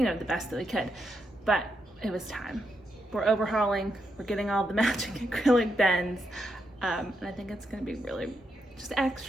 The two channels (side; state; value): both; normal; correlation 0.83